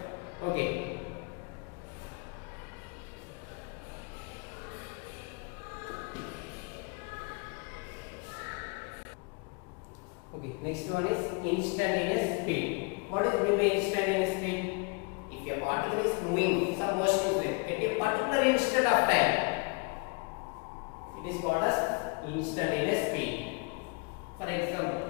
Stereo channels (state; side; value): quieter; right; 31.5 dB